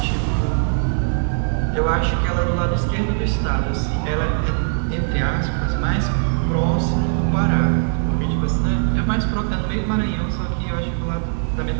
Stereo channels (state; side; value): silent; left; digital silence